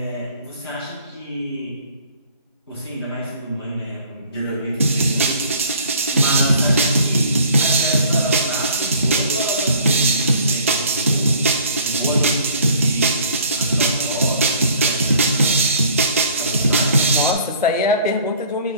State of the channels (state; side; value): inverted; both; correlation -0.53